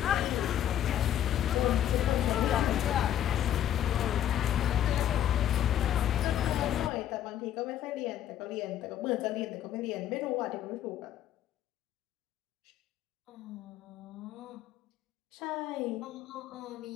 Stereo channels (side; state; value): right; quieter; 11.0 dB